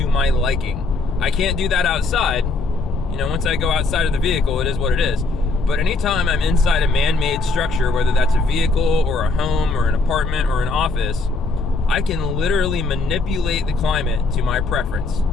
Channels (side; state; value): right; quieter; 3.5 dB